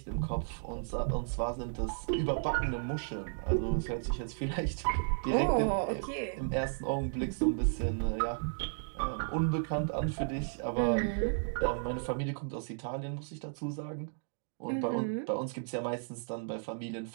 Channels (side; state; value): left; silent; digital silence